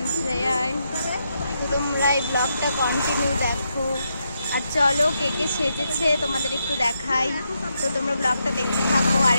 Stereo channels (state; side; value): inverted; both; correlation -0.81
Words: থেকে। তোমরা এই ব্লগটা কন্টিনিউ দেখো। আর চলো কে কে সেজেছে তোমাদের একটু দেখাই, তো তোমরা ব্লগটা দেখতে থাকো। আর